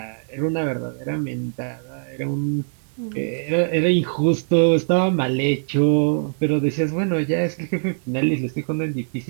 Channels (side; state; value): left; silent; digital silence